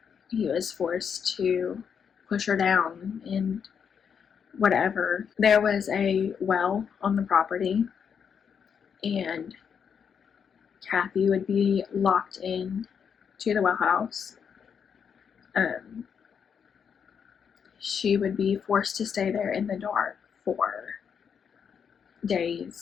He was forced to push her down and whatever. There was a well on the property, and Kathy would be locked in to the well house. She would be forced to stay there in the dark for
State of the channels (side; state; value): right; quieter; 7.1 dB